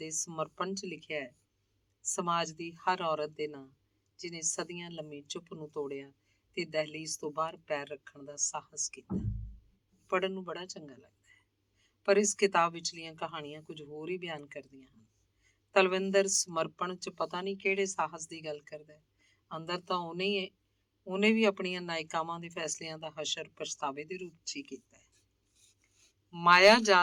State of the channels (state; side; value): identical; both; correlation 1.00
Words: ਸਮਰਪਣ 'ਚ ਲਿਖਿਆ ਹੈ, ਸਮਾਜ ਦੀ ਹਰ ਔਰਤ ਦੇ ਨਾਂ ਜਿਹਨੇ ਸਦੀਆਂ ਲੰਮੀ ਚੁੱਪ ਨੂੰ ਤੋੜਿਆ ਤੇ ਦਹਿਲੀਜ਼ ਤੋਂ ਬਾਹਰ ਪੈਰ ਰੱਖਣ ਦਾ ਸਾਹਸ ਕੀਤਾ। ਪੜ੍ਹਨ ਨੂੰ ਬੜਾ ਚੰਗਾ ਲੱਗਦਾ ਹੈ, ਪਰ ਇਸ ਕਿਤਾਬ ਵਿਚਲੀਆਂ ਕਹਾਣੀਆਂ ਕੁਝ ਹੋਰ ਹੀ ਬਿਆਨ ਕਰਦੀਆਂ ਹਨ। ਤਲਵਿੰਦਰ ਸਮਰਪਣ 'ਚ ਪਤਾ ਨਹੀਂ ਕਿਹੜੇ ਸਾਹਸ ਦੀ ਗੱਲ ਕਰਦਾ ਹੈ, ਅੰਦਰ ਤਾਂ ਉਹਨੇ ਵੀ ਆਪਣੀਆਂ ਨਾਇਕਾਵਾਂ ਦੇ ਫੈਸਲਿਆਂ ਦਾ ਹਸ਼ਰ ਪਛਤਾਵੇ ਦੇ ਰੂਪ 'ਚ ਹੀ ਕੀਤਾ ਹੈ। ਮਾਇਆ